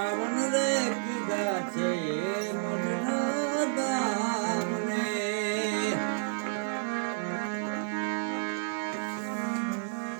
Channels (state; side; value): silent; left; digital silence